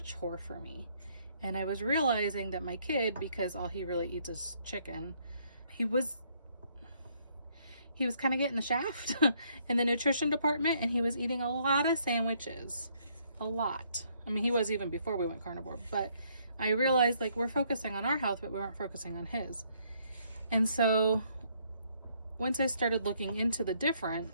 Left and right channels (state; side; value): inverted; both; correlation -0.69